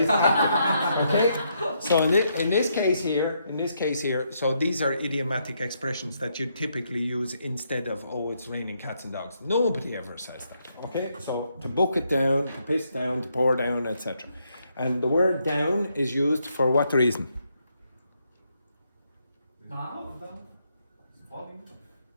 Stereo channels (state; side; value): inverted; both; correlation -0.77